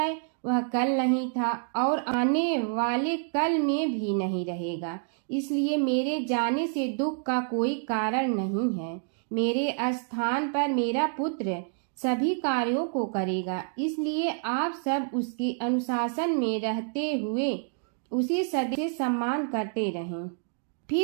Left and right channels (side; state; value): left; silent; 57 dB below the other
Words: वह कल नहीं था और आने वाले कल में भी नहीं रहेगा। इसलिए मेरे जाने से दुख का कोई कारण नहीं है। मेरे स्थान पर मेरा पुत्र सभी कार्यों को करेगा, इसलिए आप सब उसके अनुशासन में रहते हुए उसे सदैव सम्मान करते रहें।